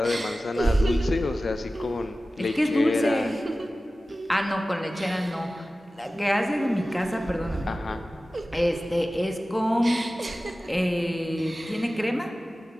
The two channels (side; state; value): both; normal; correlation 0.96